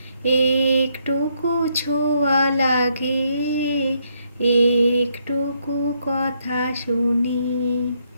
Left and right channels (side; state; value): both; inverted; correlation -0.74